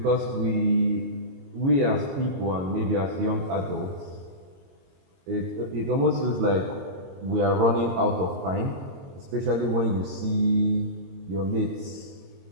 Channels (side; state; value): left; late; 22 ms